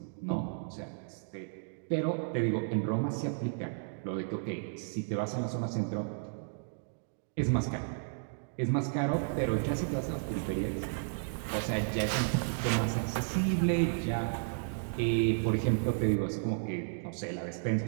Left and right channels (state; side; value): silent; left; digital silence